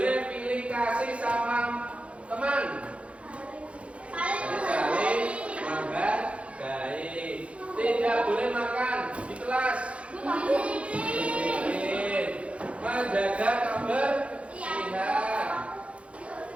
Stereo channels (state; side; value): late; left; 0.062 ms